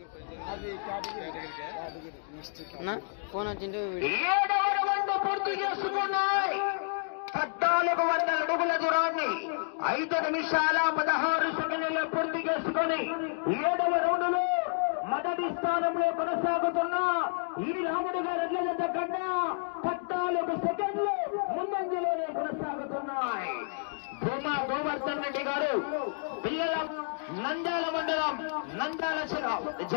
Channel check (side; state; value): right; silent; digital silence